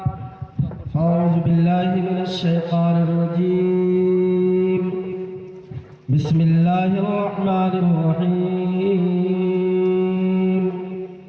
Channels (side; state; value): both; identical; correlation 1.00